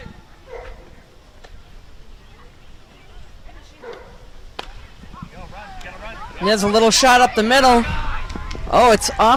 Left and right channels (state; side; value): identical; both; correlation 1.00